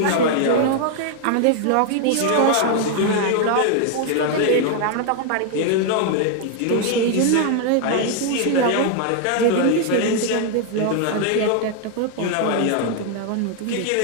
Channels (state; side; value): different; both; correlation 0.00